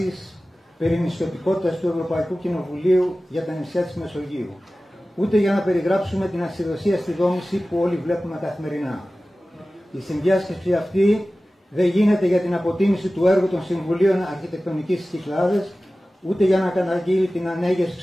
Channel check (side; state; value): both; normal; correlation 0.96